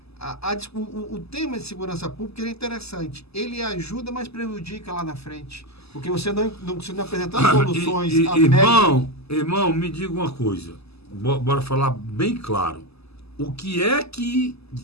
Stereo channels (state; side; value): late; right; 0.79 ms